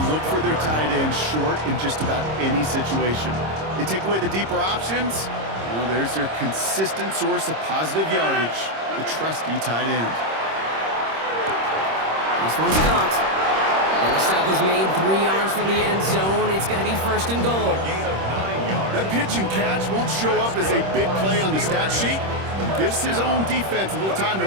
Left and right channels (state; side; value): late; left; 26 ms